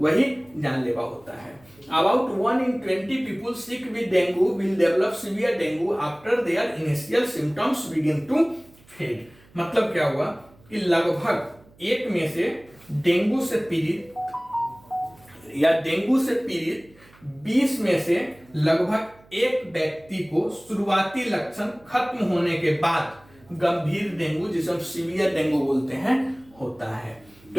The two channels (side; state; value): right; noise; hum, 28 dB below the sound